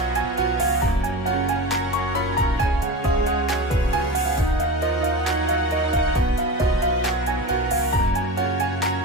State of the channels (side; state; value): both; normal; correlation 0.27